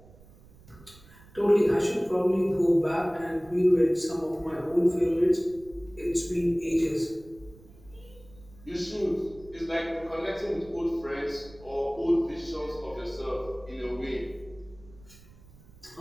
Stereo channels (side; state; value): right; noise; rumble, 23 dB below the sound